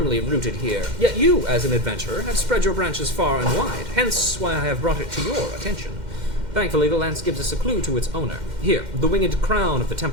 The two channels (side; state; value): left; late; 2.1 ms